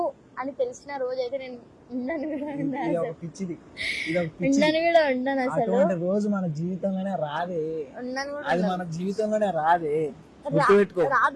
అని తెలిసిన రోజు అయితే నేను ఉండను కూడా ఉండను అసలు. రోజు మన జీవితంలోనే రాదే, ఉండను కూడా అది మన జీవితంలోనే రాదే,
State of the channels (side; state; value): both; identical; correlation 1.00